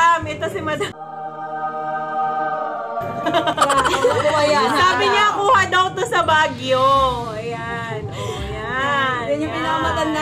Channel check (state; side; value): identical; both; correlation 1.00